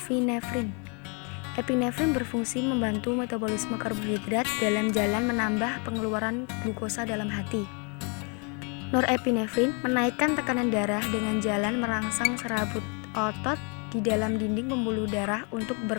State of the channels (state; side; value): quieter; right; 36.1 dB